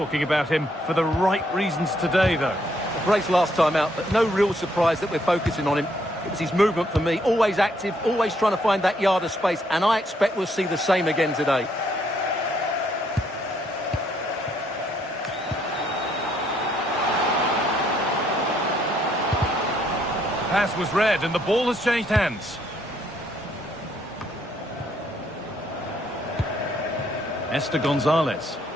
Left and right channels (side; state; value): both; normal; correlation 0.70